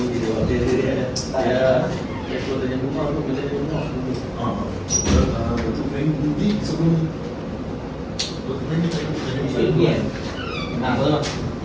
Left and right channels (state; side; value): identical; both; correlation 1.00